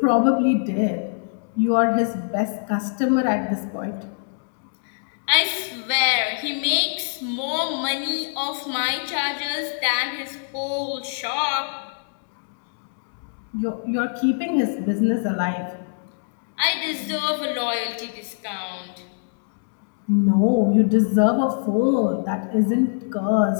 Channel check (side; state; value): right; silent; digital silence